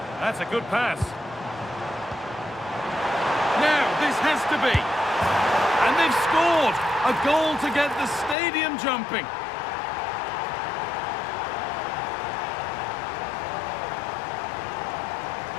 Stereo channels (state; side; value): drops out; right; at 8.3 s